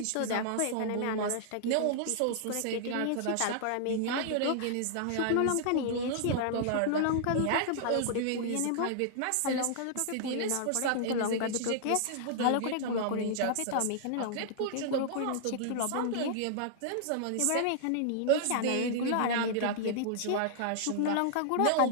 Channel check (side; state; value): both; different; correlation -0.01